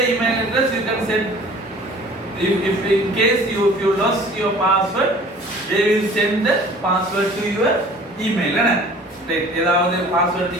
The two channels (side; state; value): both; normal; correlation 0.48